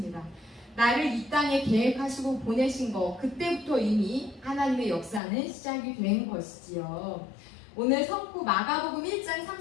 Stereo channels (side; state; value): right; drops out; at 5.2 s